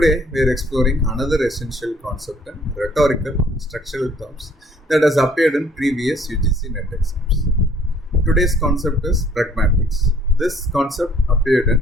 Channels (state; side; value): normal; both; correlation 0.60